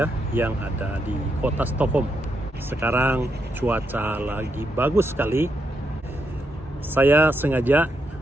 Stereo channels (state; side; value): normal; both; correlation 0.81